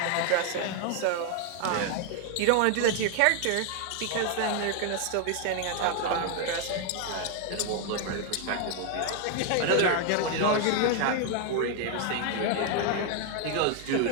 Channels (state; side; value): different; both; correlation 0.00